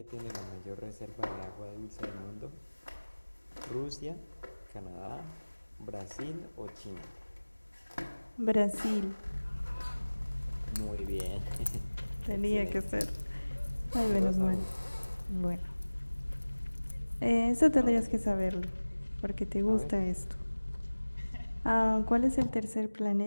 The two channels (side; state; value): both; inverted; correlation -1.00